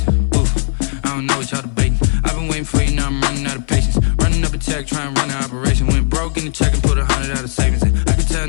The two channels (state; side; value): silent; right; 65 dB below the other